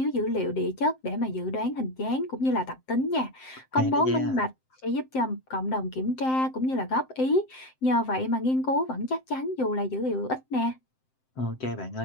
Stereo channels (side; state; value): right; late; 7.7 ms